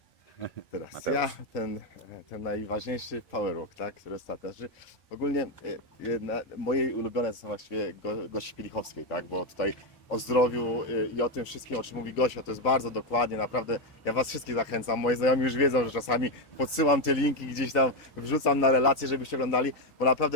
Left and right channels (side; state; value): both; normal; correlation 0.07